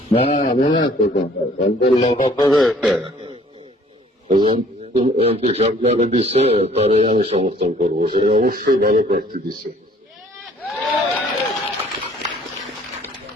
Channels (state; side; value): normal; both; correlation 0.57